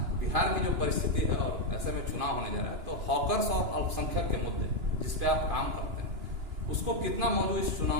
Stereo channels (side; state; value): left; late; 2.9 ms